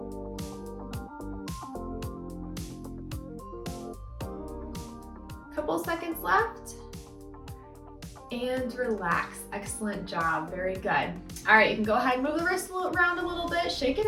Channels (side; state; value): both; identical; correlation 1.00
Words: couple couple seconds left. And relax. Excellent job. Very good. All right, you can go ahead and move the wrist around a little bit, shake it